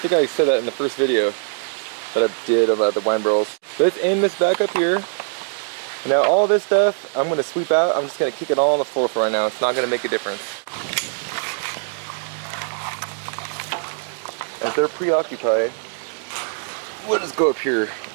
think I said that in the first video that I did about the wine barrels. Let's aim this back up here. Now all this stuff, I'm going to sweep out. I'm just going to kick it all on the floor for right now. It's not going to make a difference. As they're preoccupied, we'll just go up here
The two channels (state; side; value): silent; left; digital silence